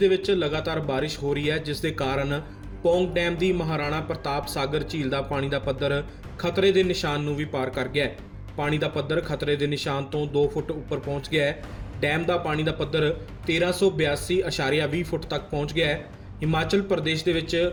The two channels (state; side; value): identical; both; correlation 1.00